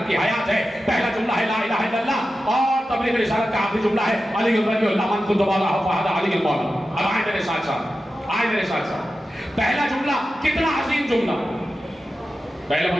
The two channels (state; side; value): normal; both; correlation 0.92